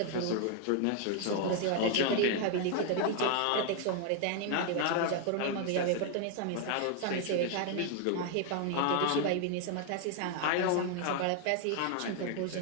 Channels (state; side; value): different; both; correlation 0.00